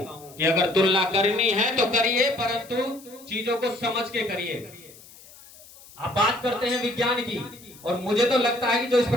कि अगर तुलना करनी है तो करिए, परंतु चीजों को समझ के करिए। आप बात करते हैं विज्ञान की, और मुझे तो लगता है कि जो इस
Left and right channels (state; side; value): noise; left; hiss, 22 dB below the sound